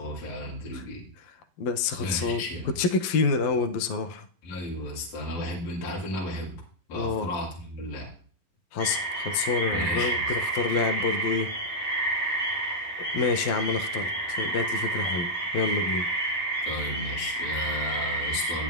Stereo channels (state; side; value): late; right; 12 ms